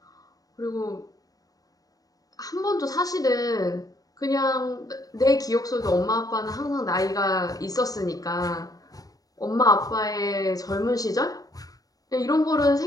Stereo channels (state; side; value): late; right; 0.18 ms